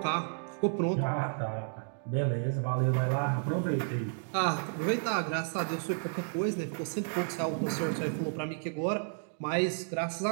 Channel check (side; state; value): left; silent; digital silence